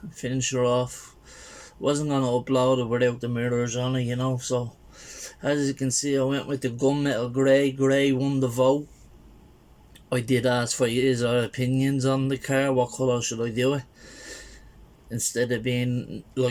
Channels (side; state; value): both; identical; correlation 1.00